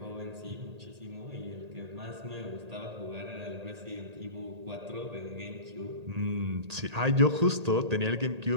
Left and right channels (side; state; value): left; late; 1.8 ms